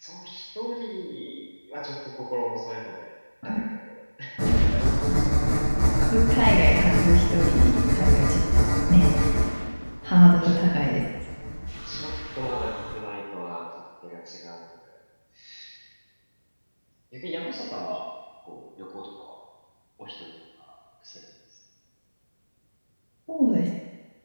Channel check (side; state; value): both; inverted; correlation -1.00